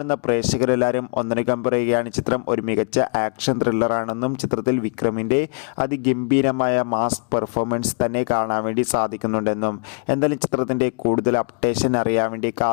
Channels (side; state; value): right; quieter; 39.3 dB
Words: പ്രേക്ഷകരെല്ലാവരും ഒന്നടങ്കം പറയുകയാണ് ചിത്രം ഒരു മികച്ച ആക്ഷൻ ത്രില്ലറാണെന്നും ചിത്രത്തിൽ വിക്രമിൻ്റെ അതിഗംഭീരമായ മാസ് പെർഫോമൻസ് തന്നെ കാണാൻ വേണ്ടി സാധിക്കുന്നുണ്ടെന്നും. എന്തായാലും ചിത്രത്തിൻ്റെ കൂടുതൽ അപ്ഡേഷൻ അറിയാൻ വേണ്ടി